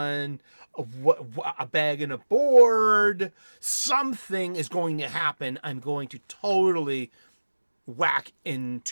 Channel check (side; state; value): both; inverted; correlation -1.00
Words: a bag and a board. Something is going to happen. I'm going to totally whack